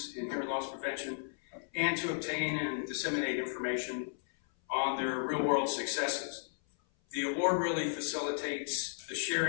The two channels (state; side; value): silent; right; 55 dB below the other